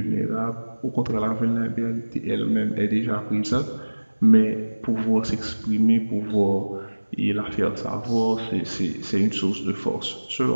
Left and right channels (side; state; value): both; inverted; correlation -1.00